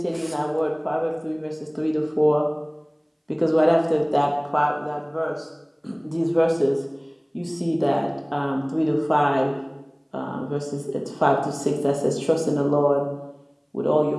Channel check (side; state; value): both; identical; correlation 1.00